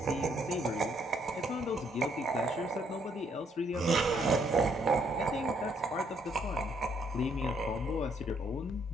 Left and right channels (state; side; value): normal; both; correlation 0.70